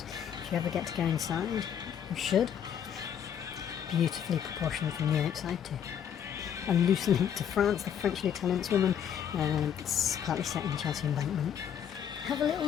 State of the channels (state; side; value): quieter; right; 8.8 dB